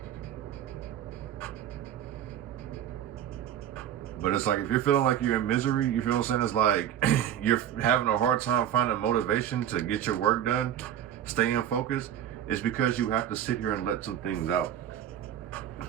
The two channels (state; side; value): quieter; left; 10.4 dB